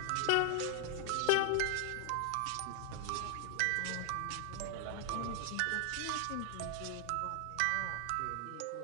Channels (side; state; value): both; different; correlation 0.00